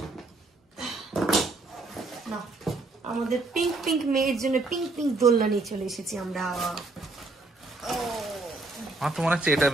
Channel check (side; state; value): left; quieter; 3.3 dB